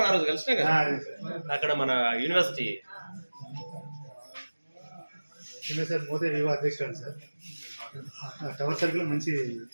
ఆ రోజు కలిసినా కదా అక్కడ మన యూనివర్సిటీ సార్. మోదే వివా అధ్యక్షుడు సార్. టవర్ సర్కిల్ మంచి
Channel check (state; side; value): inverted; both; correlation -1.00